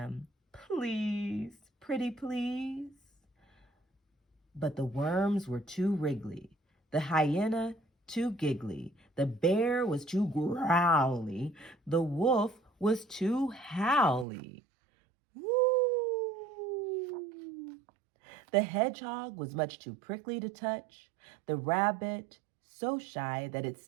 Please, pretty please. But the worms were too wriggly, the hyena too giggly, the bear was too growly, the wolf was too howly. Woo! The hedgehog was much too prickly to touch, the rabbit so shy that it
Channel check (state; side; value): drops out; left; at 14.2 s